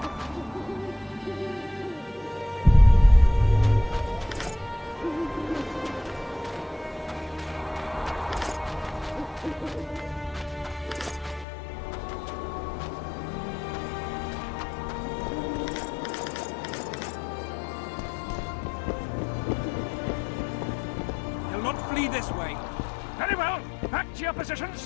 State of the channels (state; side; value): drops out; right; at 11.5 s